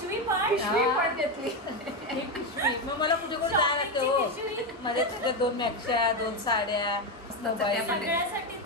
पण पिशवी पण घेतली. ही पिशवी मग मला कुठे कुठे जायला लागते हो. पिशवी. माझ्या तुझ्या 2 मॅक्शा, 2 साड्या, मोबाईल.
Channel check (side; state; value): both; normal; correlation 0.11